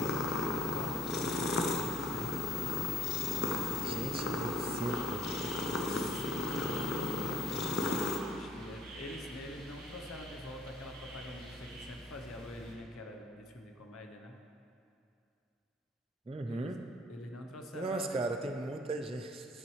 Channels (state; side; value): normal; both; correlation 0.59